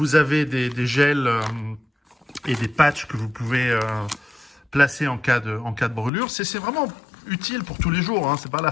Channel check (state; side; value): drops out; right; at 6.1 s